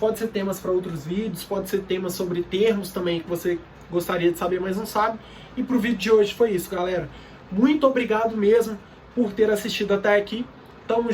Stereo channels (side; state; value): both; identical; correlation 1.00